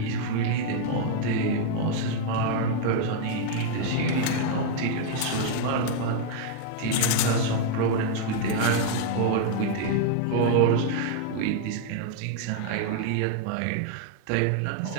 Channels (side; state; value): both; different; correlation 0.00